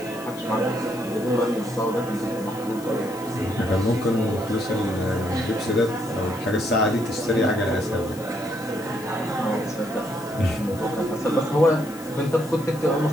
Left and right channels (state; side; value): noise; left; hiss, 18 dB below the sound